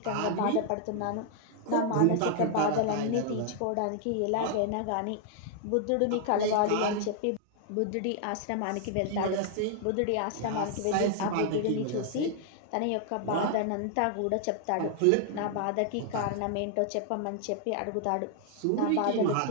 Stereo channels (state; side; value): different; both; correlation 0.00